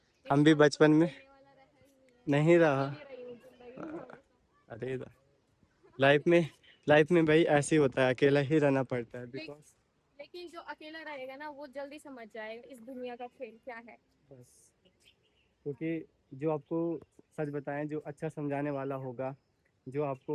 हम भी इंसान तो बचपन में खेलने वाला रहा ही नहीं है। नहीं मैं रहा। खेल ही रही हूँ जिंदगी में हमेशा। अरे लाइफ में भाई ऐसे ही होता है, अकेला ही रहना पड़ता है, ले, बिकॉज लेकिन जो अकेला रहेगा ना वो जल्दी समझ जाएगा इस दुनिया का खेल क्या है। बस क्योंकि जो आपको सच बताएं, जो अच्छा समझाने वाला होगा, जो आपको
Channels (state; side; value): identical; both; correlation 1.00